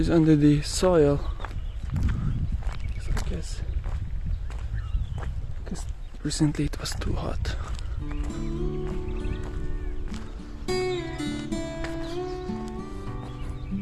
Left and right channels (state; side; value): identical; both; correlation 1.00